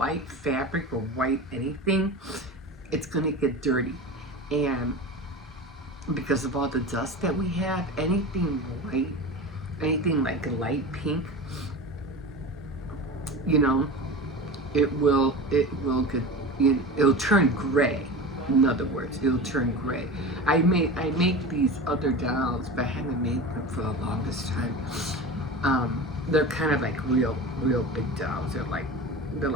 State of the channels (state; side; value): normal; both; correlation 0.30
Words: fabric or white anything, it's going to get dirty. And because of all the dust that we have, anything white, anything like a light pink, you know, it will get, it'll turn gray. In other words, it'll turn gray. I make these other dolls, but I haven't made them for the longest time. They're kind of like real big dolls. They're